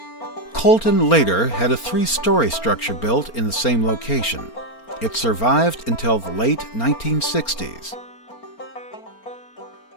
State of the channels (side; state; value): right; late; 4.3 ms